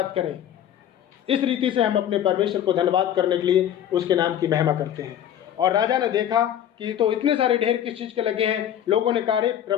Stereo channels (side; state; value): right; quieter; 10.4 dB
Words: करें। इस रीति से हम अपने परमेश्वर को धन्यवाद करने के लिए उसके नाम की महिमा करते हैं। और राजा ने देखा कि तो इतने सारे ढेर किस चीज़ के लगे हैं। लोगों ने कहा, अरे